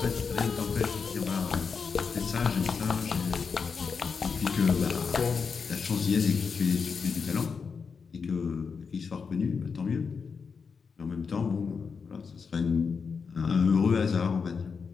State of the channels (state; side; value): quieter; right; 5.5 dB